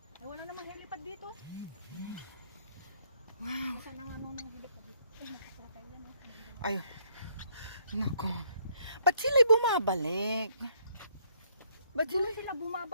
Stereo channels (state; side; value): inverted; both; correlation -0.69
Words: Eh, wala namang helipad dito. Wow. Saan ang ano ng helipad dito? Eh, nakasara tayo yan. Ay, nako. Ba't sila'y bumabalik? Ba't Doon sila? sila